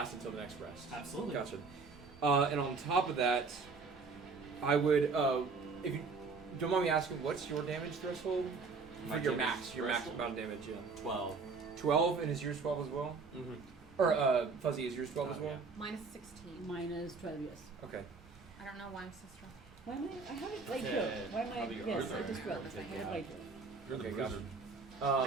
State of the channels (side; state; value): left; quieter; 4.5 dB